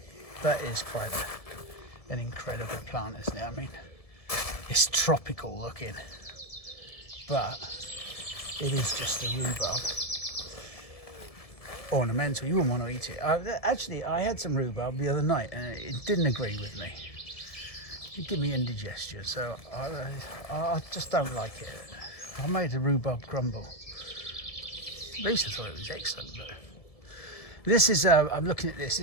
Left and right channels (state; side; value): late; right; 1.7 ms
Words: That is quite an incredible plant, isn't it? I mean, it's tropical looking, but it is just a rhubarb. Ornamental. You wouldn't want to eat it. Actually, I had some rhubarb the other night and it didn't agree with me. It gave me indigestion, so I just don't like it. I made a rhubarb crumble. At least I thought it was excellent. But this is, I'm looking at this.